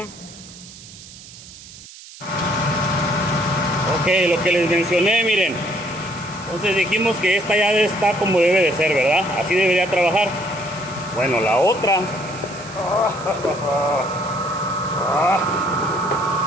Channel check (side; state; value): right; noise; hiss, 18 dB below the sound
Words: Ok, lo que les mencioné, miren. Entonces dijimos que esta ya está como debe de ser, ¿verdad? Así debería trabajar. Bueno, la otra...